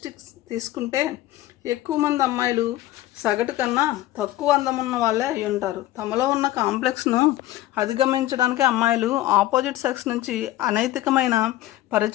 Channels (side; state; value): right; quieter; 15.3 dB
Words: తీసుకుంటే ఎక్కువ మంది అమ్మాయిలు సగటు కన్నా తక్కువ అందం ఉన్న వాళ్ళే అయి ఉంటారు. తమలో ఉన్న కాంప్లెక్స్ను అధిగమించడానికి అమ్మాయిలు ఆపోజిట్ సెక్స్ నుంచి అనైతికమైన